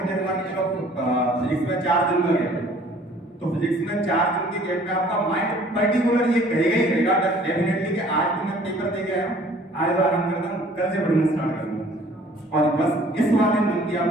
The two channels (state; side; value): normal; both; correlation 0.54